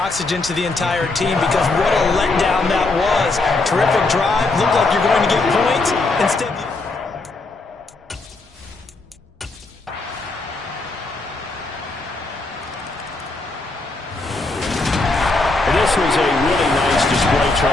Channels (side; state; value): right; quieter; 3.4 dB